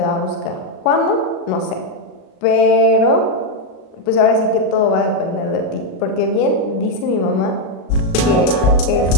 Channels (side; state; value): right; late; 37 ms